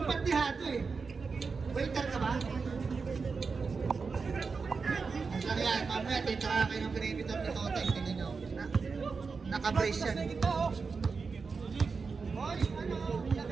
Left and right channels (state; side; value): quieter; left; 4.8 dB